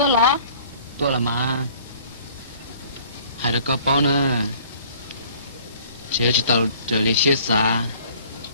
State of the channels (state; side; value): inverted; both; correlation -0.54